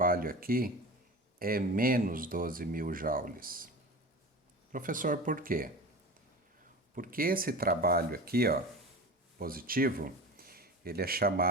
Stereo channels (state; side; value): normal; both; correlation 0.32